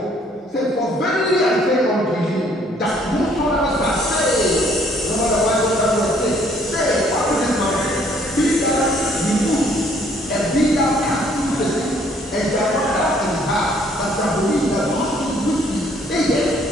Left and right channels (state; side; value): normal; both; correlation 0.63